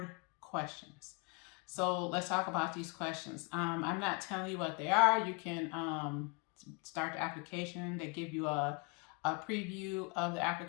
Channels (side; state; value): right; quieter; 32.0 dB